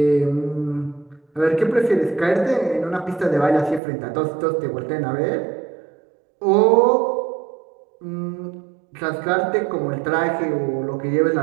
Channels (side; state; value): left; drops out; at 3.8 s